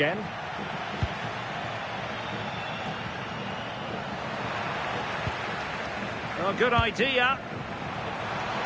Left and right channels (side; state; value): both; identical; correlation 1.00